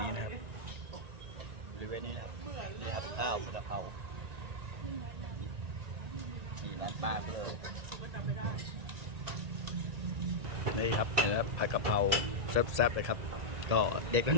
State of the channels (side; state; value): left; late; 1.9 ms